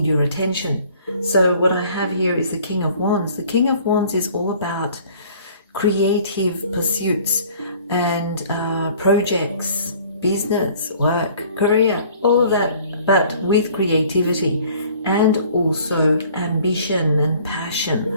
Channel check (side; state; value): both; inverted; correlation -0.53